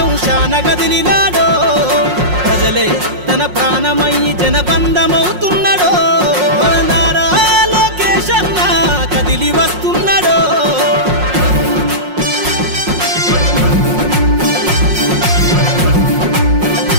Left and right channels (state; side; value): late; left; 5.5 ms